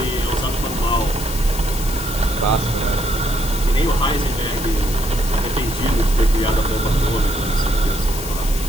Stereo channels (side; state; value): left; noise; hiss, 9 dB below the sound